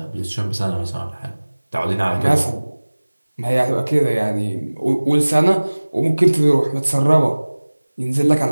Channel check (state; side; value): inverted; both; correlation -1.00